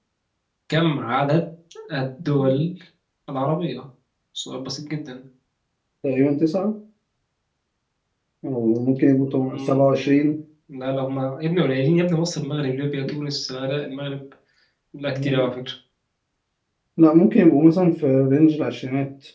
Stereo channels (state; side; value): identical; both; correlation 1.00